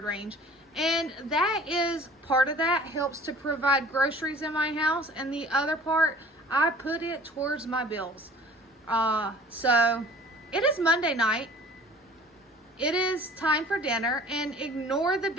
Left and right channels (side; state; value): both; normal; correlation 0.48